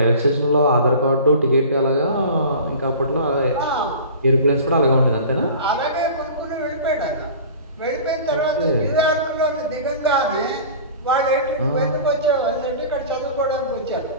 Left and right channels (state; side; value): inverted; both; correlation -0.39